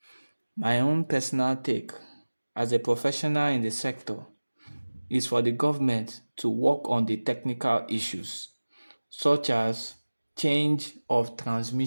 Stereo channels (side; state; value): both; inverted; correlation -1.00